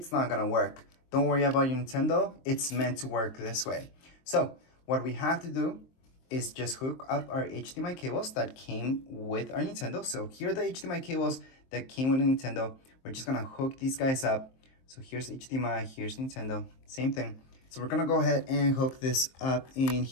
not gonna work. Don't worry about your Nintendo. It's meant to work this way. So what we have to do is just hook up our HDMI cables that came with our Nintendo. So here are the HDMI cables that came with the Nintendo. We're just gonna hook these guys up. So here's HDMI, here's Nintendo, same thing. So we're gonna go ahead and hook this up in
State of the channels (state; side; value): late; right; 23 ms